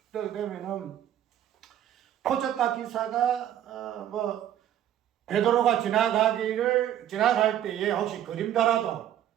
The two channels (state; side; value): quieter; left; 11.2 dB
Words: 그렇게 되면은 표적과 기사가 베드로가 지나갈 때에 혹시 그림자라도